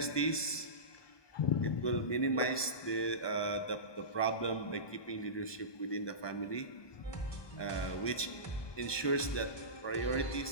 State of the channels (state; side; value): late; right; 1.2 ms